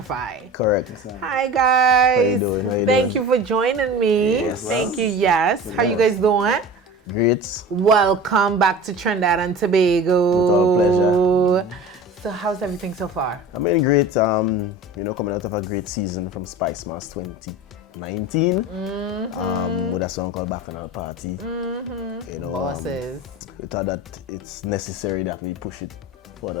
Correct. Hi guys. How you doing? Thank you for joining me. Yes, Thank you. Yes. How you guys doing? Great. Welcome back to Trinidad and Tobago. With our pleasure. So how's everything so far? I mean, great. Coming out of a great season from Spice Mass 2019 with a song called Back on Our Party. Bosses. We thought that it's necessary that we push it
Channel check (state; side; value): normal; both; correlation 0.36